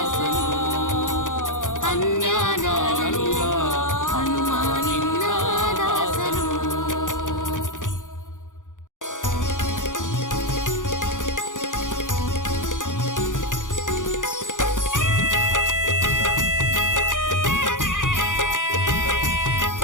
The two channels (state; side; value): late; right; 0.87 ms